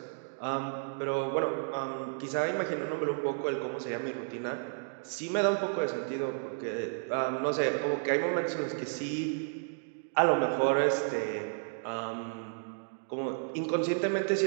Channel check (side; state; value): left; silent; digital silence